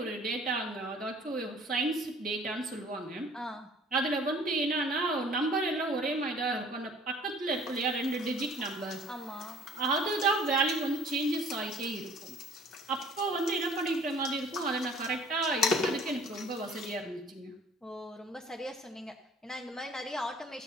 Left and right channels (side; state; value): both; normal; correlation 0.52